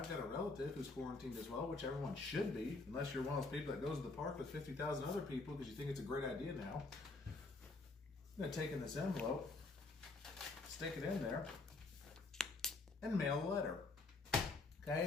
got a relative who's quarantined as well, which everyone should be, unless you're one of those people that goes to the park with 50,000 other people because you think it's a great idea now, I'm going to take in this envelope, stick it in there, and mail a letter.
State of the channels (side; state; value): right; quieter; 3.5 dB